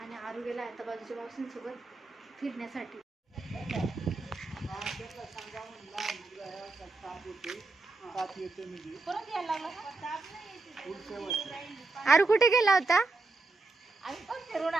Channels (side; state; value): left; quieter; 3.5 dB